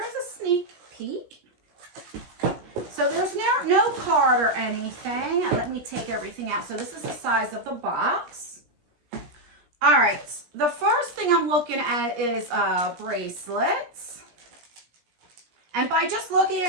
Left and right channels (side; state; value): left; late; 17 ms